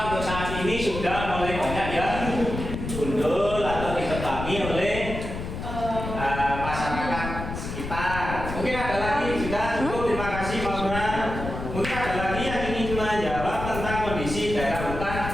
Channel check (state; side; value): noise; left; rumble, 6 dB below the sound